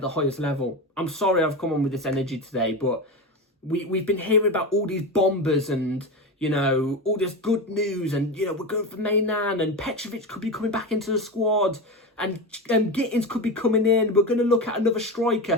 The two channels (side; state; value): both; normal; correlation 0.21